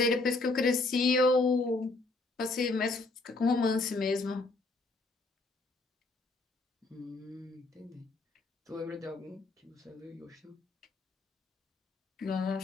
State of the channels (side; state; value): right; quieter; 3.3 dB